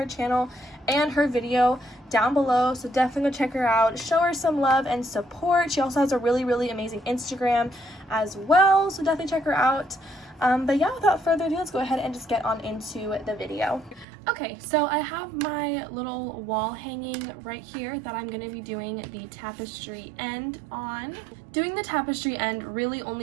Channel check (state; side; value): drops out; left; at 14.1 s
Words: channel and her video down below, so definitely go check her out. Show her some love and support. She also has a really amazing Instagram as well, so definitely check her out. But yeah, without further ado, let's go ahead and just get on into the video. Okay, so I have my little wall hanging right here that I'm going to be doing the tapestry end on. Doing the tapestry end really